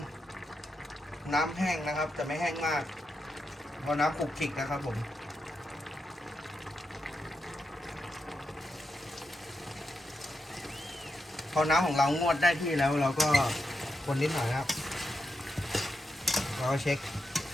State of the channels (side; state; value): both; normal; correlation 0.86